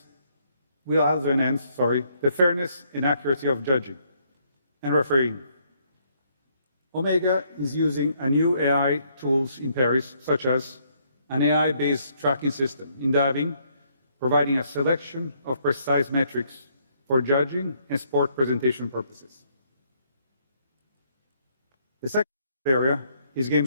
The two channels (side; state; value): both; inverted; correlation -0.70